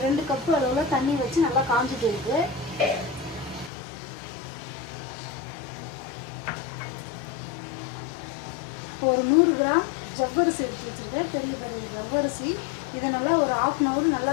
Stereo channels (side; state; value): right; drops out; at 3.7 s